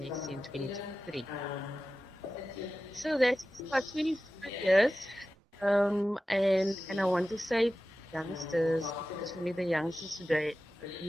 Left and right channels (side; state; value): both; normal; correlation 0.94